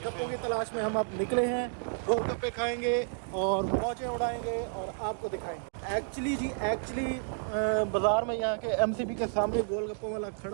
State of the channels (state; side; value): silent; left; digital silence